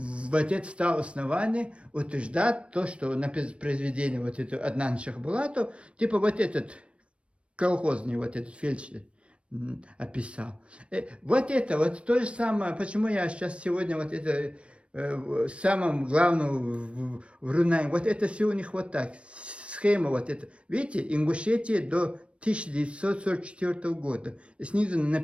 стало основание утверждать то, что на произведение вот это Аднан Шахбулатов, типа вот этот колхозный, вот этот фельдшер описал. Вот это, вот то же самое, почему я сейчас сегодня вот это самым главным в Рунае, вот это все у них вот так, схема вот это. Видите, Ингушетия до 1944 года. И снизу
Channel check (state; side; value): late; left; 0.060 ms